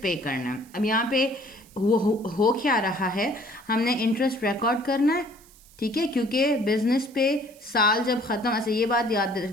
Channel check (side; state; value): right; noise; hiss, 25 dB below the sound